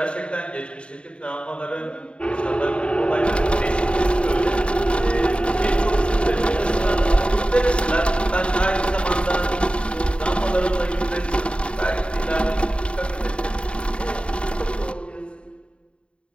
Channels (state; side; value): late; right; 0.056 ms